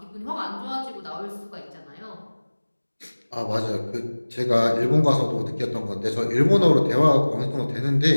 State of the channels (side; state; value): both; inverted; correlation -1.00